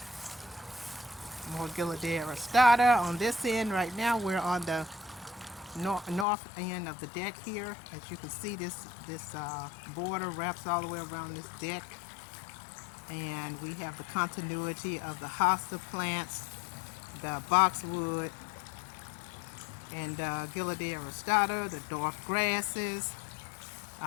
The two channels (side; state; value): right; drops out; at 6.2 s